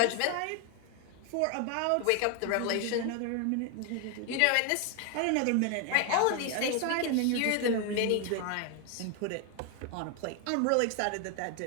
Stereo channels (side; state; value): both; different; correlation 0.01